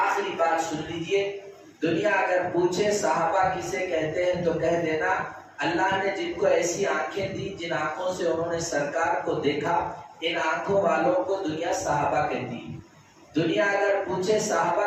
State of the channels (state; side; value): identical; both; correlation 1.00